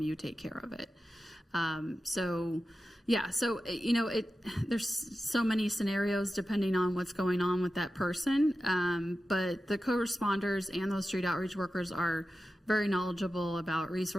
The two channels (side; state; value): both; normal; correlation 0.93